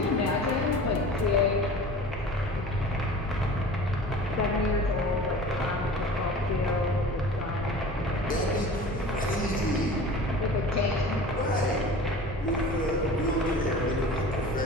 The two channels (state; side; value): normal; both; correlation 0.39